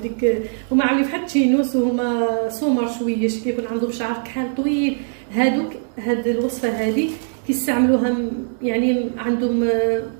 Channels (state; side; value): silent; left; 65 dB below the other